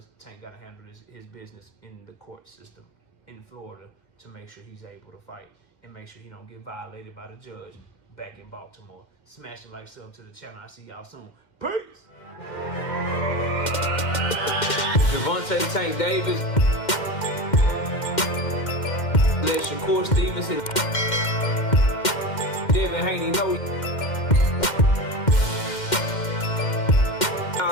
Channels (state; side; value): late; right; 2.1 ms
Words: Tank got to handle his business in the court system in Florida to make sure he's able to fight and make sure he don't get violated by the judge back in Baltimore. Smash the like, sub to the channel. I'll see y'all soon. Peace! Gervonta Tank Davis. Let Shakur Stevenson. Devin Haney know